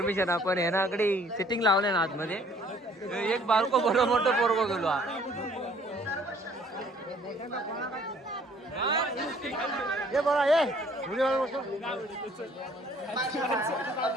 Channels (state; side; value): normal; both; correlation 0.58